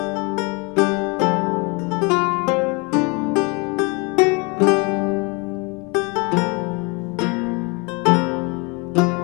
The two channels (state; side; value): quieter; right; 30.0 dB